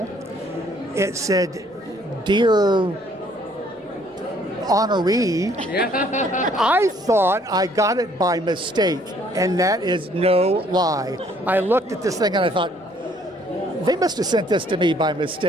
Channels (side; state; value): both; normal; correlation 0.63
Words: It said, "Dear honoree." I thought I got it by mistake, and that is no lie. I looked at this thing and I thought, they must have sent this to me by